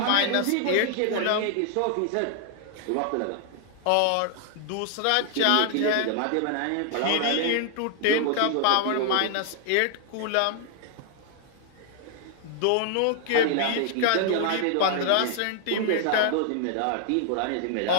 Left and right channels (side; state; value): both; different; correlation 0.00